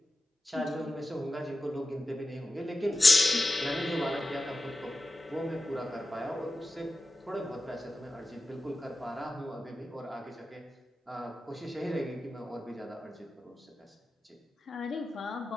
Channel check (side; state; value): both; normal; correlation 0.94